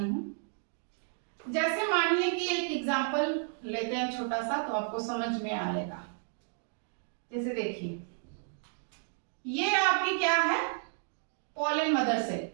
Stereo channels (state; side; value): silent; left; 56 dB below the other